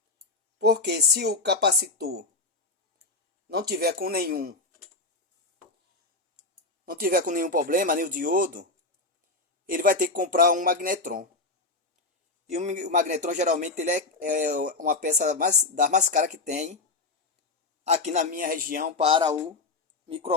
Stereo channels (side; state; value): right; quieter; 3.3 dB